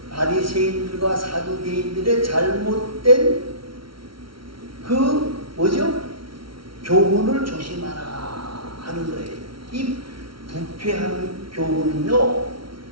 바리새인들과 사두개인들의 잘못된 그 뭐죠? 교훈을 조심하라 하는 거예요. 이 부패한 교훈은요,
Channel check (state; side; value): late; left; 0.74 ms